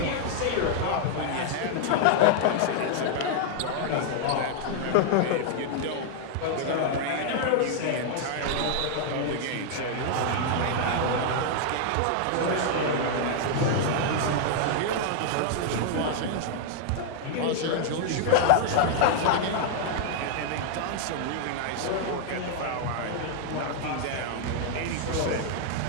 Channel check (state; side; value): different; both; correlation 0.00